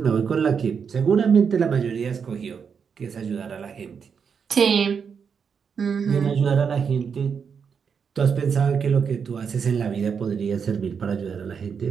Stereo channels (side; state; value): left; quieter; 6.5 dB